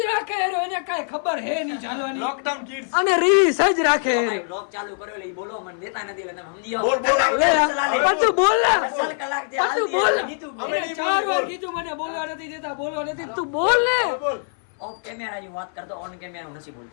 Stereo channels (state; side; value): silent; right; 59 dB below the other